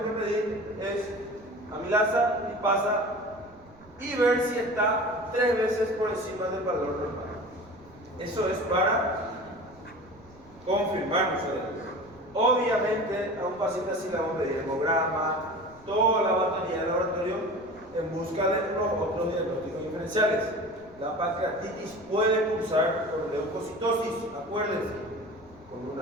que pedir es amilasa, lipasa y ver si está 3 veces por encima del valor normal. Eso es para confirmar nosotros. Obviamente a un paciente así le vamos a pedir hemograma, toda la batería del laboratorio en busca de los otros diagnósticos diferenciales. La pancreatitis puede cursar con leucocitosis, acuérdense, con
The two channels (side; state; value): right; noise; rumble, 25 dB below the sound